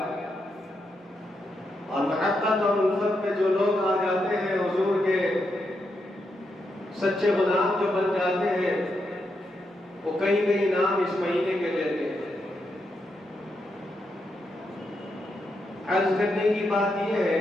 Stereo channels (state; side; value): normal; both; correlation 0.83